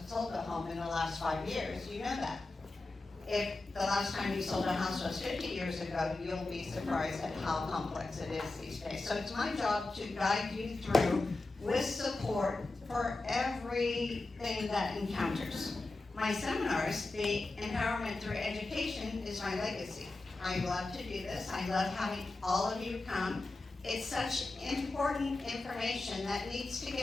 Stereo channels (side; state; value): right; quieter; 3.1 dB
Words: sold a home in the last 5 years, you know that. If the last time you sold a house was 50 years ago, you'll be surprised at how complex it is these days. So it's my job to guide you through with support for everything that encounters. My seminars, the empowerment through education, is my legacy. I love to do this. I love having all of you come. It's such important information that needs to